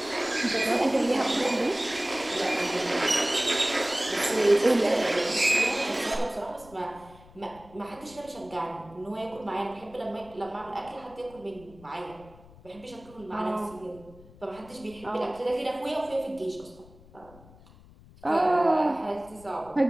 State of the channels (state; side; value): noise; left; rumble, 23 dB below the sound